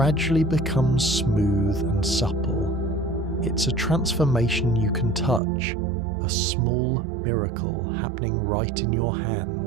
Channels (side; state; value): left; drops out; at 5.4 s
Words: becomes smooth and supple. It's a transformation you can touch, a small miracle happening right in your